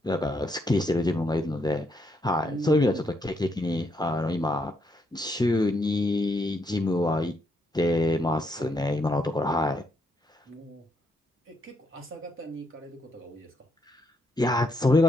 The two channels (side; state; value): both; normal; correlation 0.76